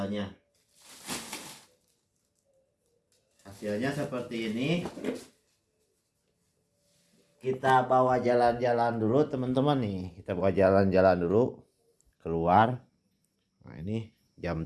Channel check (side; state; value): both; identical; correlation 1.00